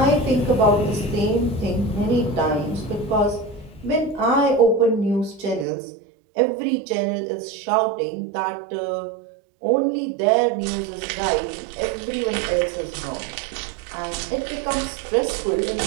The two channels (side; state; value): left; drops out; at 5.7 s